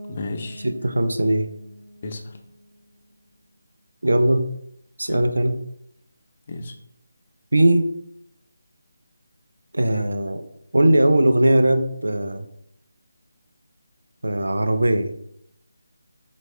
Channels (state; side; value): inverted; both; correlation -0.96